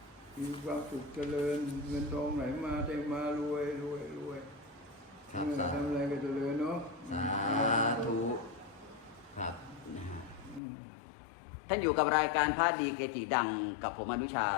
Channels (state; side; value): drops out; right; at 10.6 s